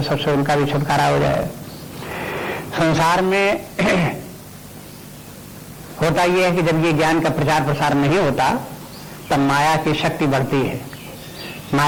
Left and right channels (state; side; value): identical; both; correlation 1.00